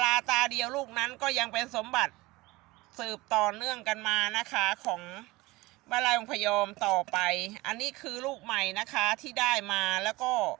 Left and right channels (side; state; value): left; quieter; 21.1 dB